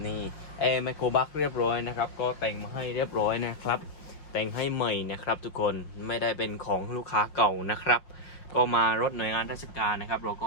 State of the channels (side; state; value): right; late; 5.6 ms